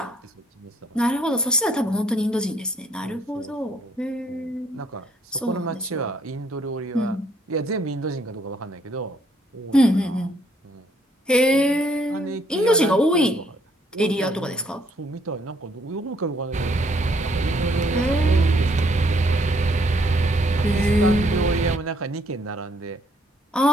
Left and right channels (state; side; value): normal; both; correlation 0.67